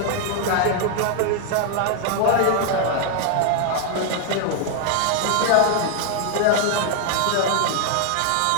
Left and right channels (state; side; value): different; both; correlation 0.00